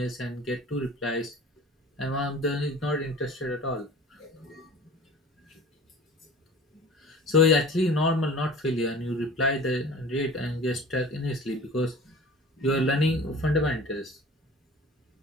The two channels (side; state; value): both; normal; correlation 0.42